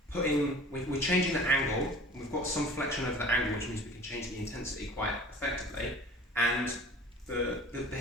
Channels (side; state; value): both; normal; correlation 0.44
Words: changing the angle, and we've got some flexion over the angle, which means we can change the intensity quite effectively. And the